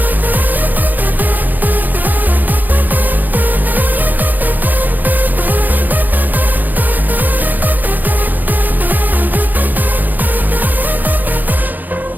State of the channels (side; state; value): left; late; 0.085 ms